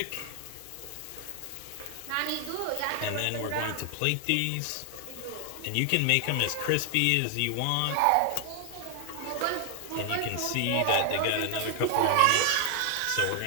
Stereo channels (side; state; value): both; different; correlation 0.00